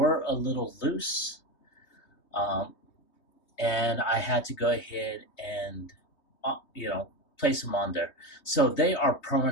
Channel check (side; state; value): right; late; 3.2 ms